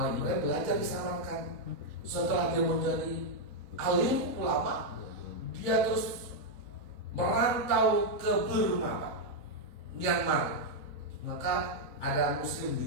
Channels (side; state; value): left; late; 4.0 ms